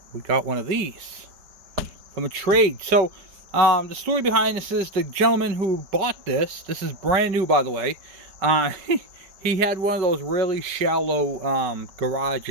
we got one of these from a trade. So the story behind this is the gentleman who bought this is brand new by the way, he had one of those really shallow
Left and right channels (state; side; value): late; left; 5.2 ms